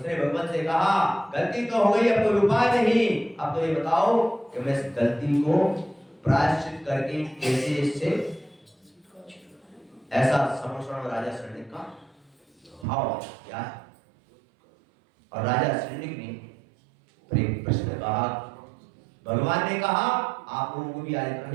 भगवान से कहा गलती तो हो गई, अब कोई उपाय नहीं, अब तो ये बताओ कि मैं इस गलती को प्रायश्चित करके कैसे इससे, ऐसा समोषण राजा शरण्य का भाव क्या है। और राजा शरण्य ने प्रश्न कहा, भगवान ने कहा आप लोगों को भी आज इतना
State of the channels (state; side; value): drops out; left; at 12.9 s